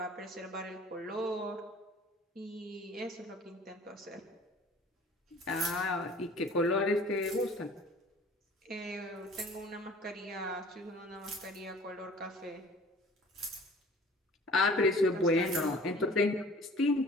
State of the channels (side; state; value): both; normal; correlation 0.48